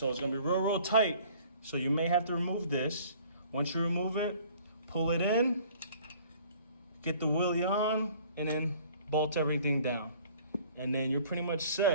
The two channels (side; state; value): both; inverted; correlation -0.53